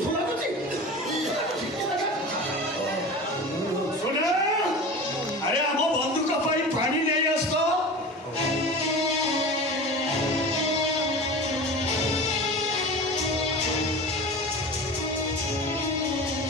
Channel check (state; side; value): normal; both; correlation 0.33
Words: ଶୁଣ ଆରେ ଆମ ବନ୍ଧୁକ ପାଇଁ ପାଣି ନେଇ ଆସ ତ।